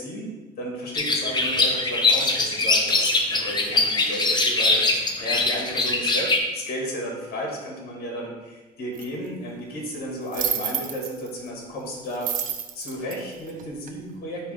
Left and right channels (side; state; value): both; normal; correlation 0.12